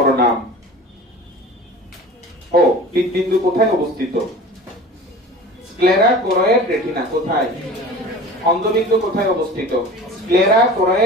নাম, ও হৃদবিন্দু কোথায় অবস্থিত? Sclera, choroid, retina. কোথায়? অন্ধবিন্দু কোথায় অবস্থিত? Sclera,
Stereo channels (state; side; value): normal; both; correlation 0.38